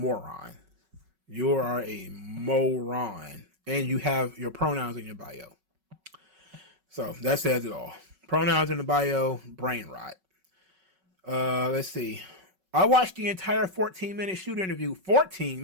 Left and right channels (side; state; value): left; late; 5.3 ms